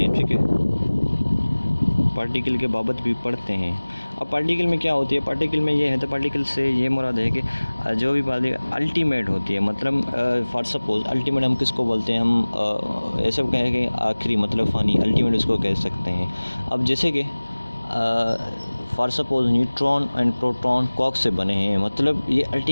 हैं, ठीक है। पार्टिकल के बाबत भी पढ़ते हैं। अब पार्टिकल में क्या होती है, पार्टिकल में ये है, तो पार्टिकल से ये मुराद है कि जो भी बात अल्टीमेट होती है, मतलब फॉर सपोज अल्टीमेट हम किसको बोलते हैं, हम ऐसे कहें कि आखिरी, मतलब फ़ानी, अल्टीमेट उसको कह सकते हैं। अब जैसे कि for suppose neutron and proton कॉक से बने हैं, मतलब ये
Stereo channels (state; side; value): inverted; both; correlation -1.00